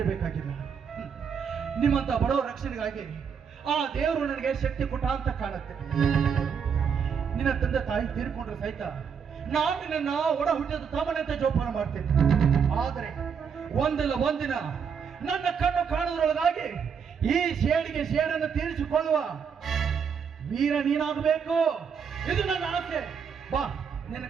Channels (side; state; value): left; quieter; 6.7 dB